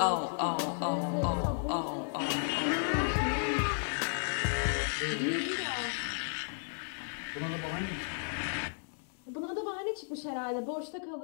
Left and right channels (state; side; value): silent; right; 55 dB below the other